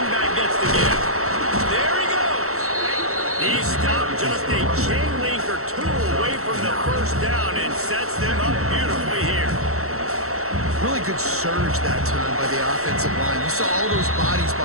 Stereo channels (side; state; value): left; late; 0.64 ms